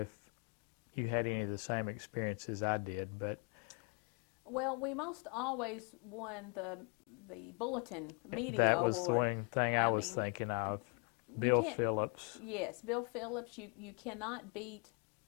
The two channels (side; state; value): right; quieter; 36.6 dB